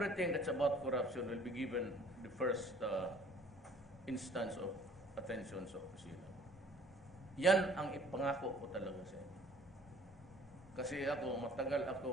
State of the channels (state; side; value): normal; both; correlation 0.54